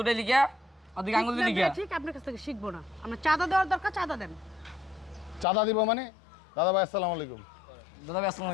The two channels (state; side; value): drops out; right; at 5.5 s